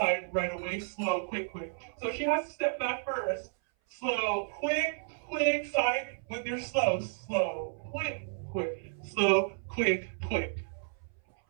right away, slow, quick, quick. So she has to step back first, slow, quick, quick, side with your slow, slow, quick, quick, slow, quick, quick.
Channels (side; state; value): left; silent; 56 dB below the other